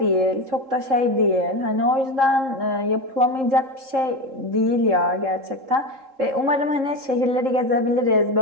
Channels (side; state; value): left; late; 3.7 ms